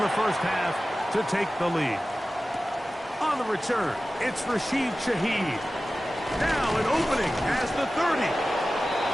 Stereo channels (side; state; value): both; normal; correlation 0.96